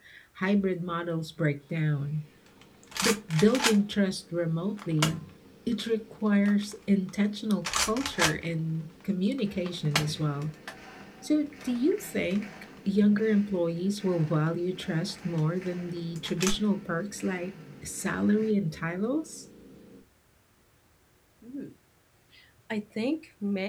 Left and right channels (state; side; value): identical; both; correlation 1.00